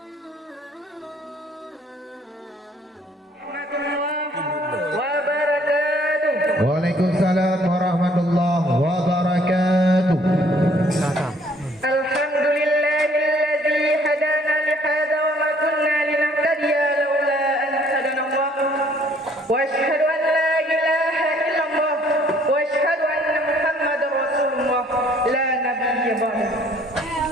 Waalaikumsalam warahmatullahi wabarakatuh. Alhamdulillahilladzi hadana li hadza wa ma kunna linahtadiya laula an hadana Allah. Wa asyhadu an la ilaha illallah wa asyhadu anna Muhammadar Rasulullah la nabiyya ba'da.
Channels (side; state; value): both; normal; correlation 0.60